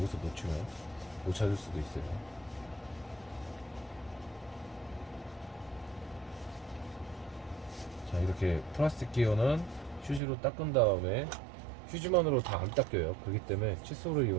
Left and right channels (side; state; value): left; drops out; at 10.2 s